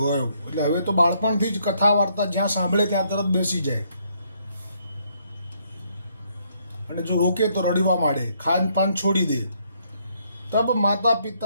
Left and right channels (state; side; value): inverted; both; correlation -0.71